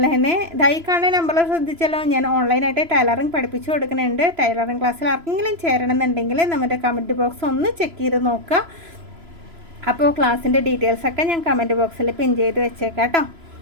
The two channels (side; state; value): left; late; 3.0 ms